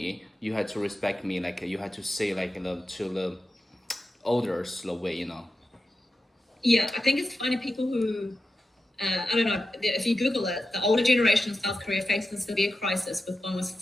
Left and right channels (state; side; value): normal; both; correlation 0.91